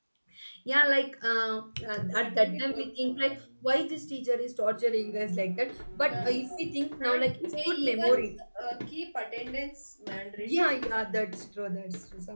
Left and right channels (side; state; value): both; inverted; correlation -1.00